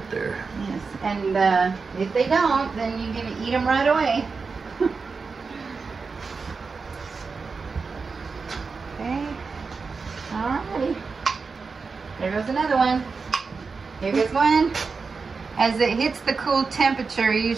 there. Yes, and if they don't, then you're gonna eat them right away. Okay, alrighty. There goes another one. Here goes one. As it hits the cool temperature,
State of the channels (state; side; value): quieter; left; 4.7 dB